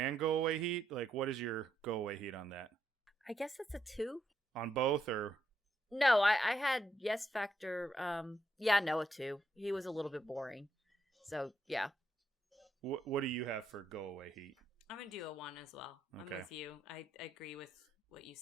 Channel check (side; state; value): both; normal; correlation 0.78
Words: go away heat? Like, what is your go away heat on that? I guess that's a 2. On both, or? No, I had yes factor. A 2. He was a little bit boring. So, yeah. What do you have for go away heat? I'm going to do a 1 as well. Okay. I'm with you. I agree with what you